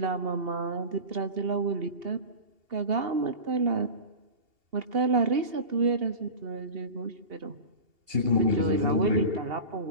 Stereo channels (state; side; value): late; left; 2.8 ms